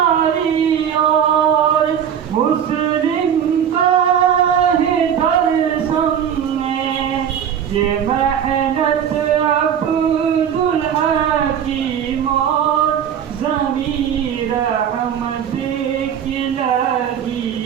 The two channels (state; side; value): quieter; left; 8.7 dB